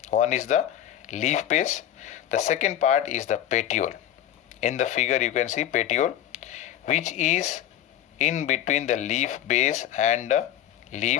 One is the leaf base, the second part is the petiole. In the figure you can see petiole, which is in between the leaf base and the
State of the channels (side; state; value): right; quieter; 11.5 dB